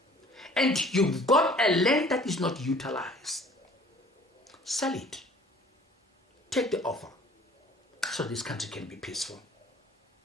and you've got a land that is not utilized, sell it. Take the offer so this country can be peaceful.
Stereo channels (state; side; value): normal; both; correlation 0.51